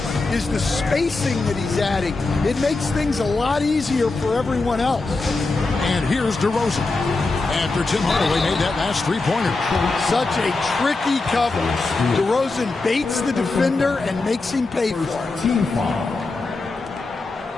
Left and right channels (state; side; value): quieter; right; 3.5 dB